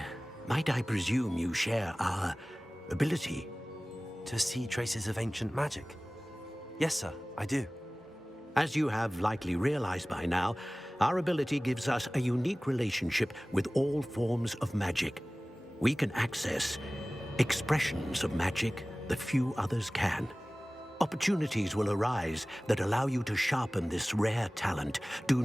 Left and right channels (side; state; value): both; normal; correlation 0.98